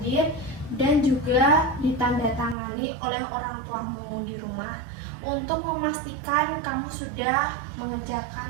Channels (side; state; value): left; drops out; at 2.6 s